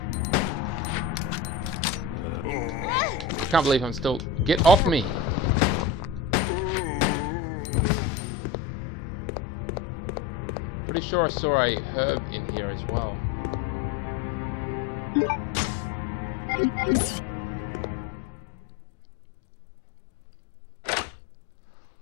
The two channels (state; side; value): drops out; right; at 7.3 s